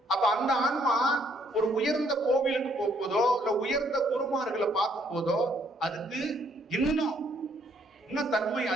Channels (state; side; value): normal; both; correlation 0.68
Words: அப்ப அந்த ஆன்மா ஒரு உயர்ந்த கோவிலுக்கு போகும்போதோ இல்ல உயர்ந்த குருமார்களை பார்க்கும் போதோ அதுக்கு இன்னும் தன்மை